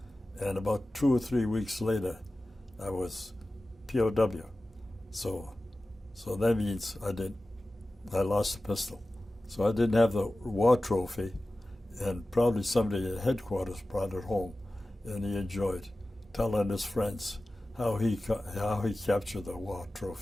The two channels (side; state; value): both; normal; correlation 0.96